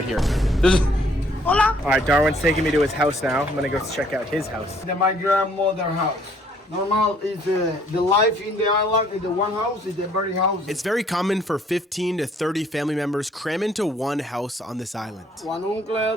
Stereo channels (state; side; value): normal; both; correlation 0.63